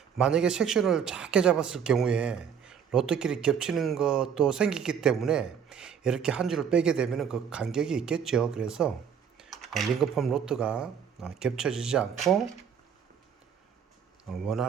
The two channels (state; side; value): quieter; left; 7.6 dB